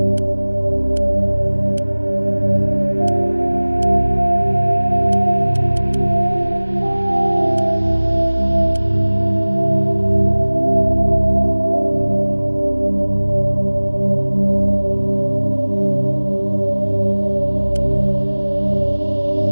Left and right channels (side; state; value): both; inverted; correlation -1.00